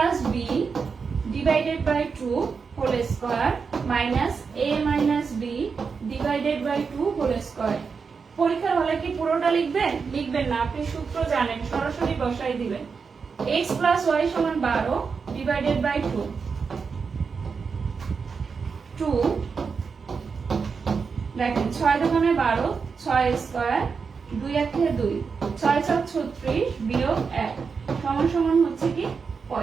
b divided by 2 whole square minus a minus b divided by 2 whole square. পরীক্ষার হলে কি পুরোটা লিখবেন? লিখবেন না, আপনি সূত্র জানেন, সরাসরি বসাই দিবেন। x প্লাস y সমান 12 ডিভাইডেড বাই 2, 2 দেখেন 6 দুগুণে 12, 6 স্কয়ার, 2 একে 2, 6 7 36 বিয়োগ 1 সমান সমান হচ্ছে কি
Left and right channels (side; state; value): left; quieter; 5.4 dB